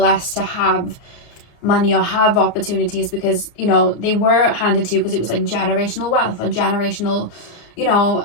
to have money or have opportunities because, you know, they were handed to you because it was like generational wealth or generational, you know,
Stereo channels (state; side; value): late; right; 34 ms